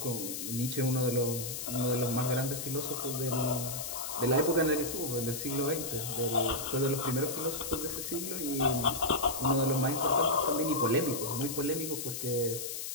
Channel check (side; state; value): left; noise; hiss, 5 dB below the sound